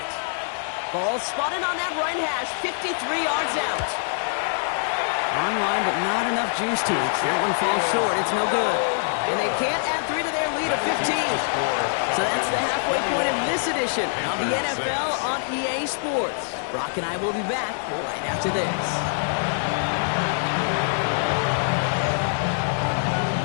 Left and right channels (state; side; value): silent; right; digital silence